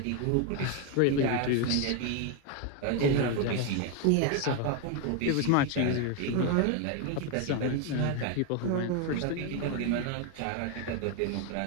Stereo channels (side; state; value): both; different; correlation 0.01